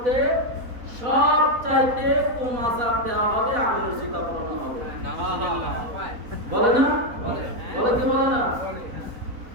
সবচাইতে কম আযাব দেওয়া হবে, আগুনের জুতা পরানো হবে। বলে না? বলে কি বলে না?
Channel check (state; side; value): late; left; 4.1 ms